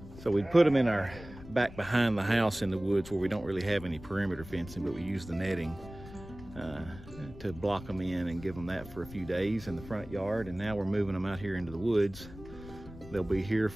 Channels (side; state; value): left; noise; rumble, 16 dB below the sound